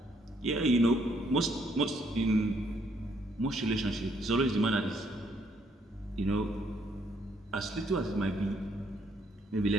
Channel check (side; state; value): both; normal; correlation 0.70